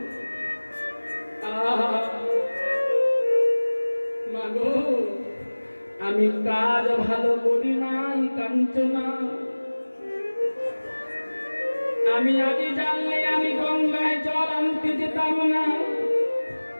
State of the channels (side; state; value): both; inverted; correlation -1.00